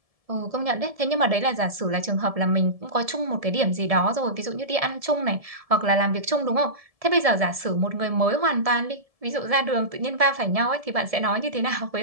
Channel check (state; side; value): late; left; 1.7 ms